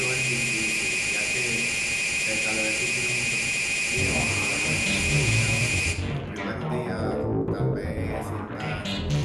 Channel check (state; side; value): identical; both; correlation 1.00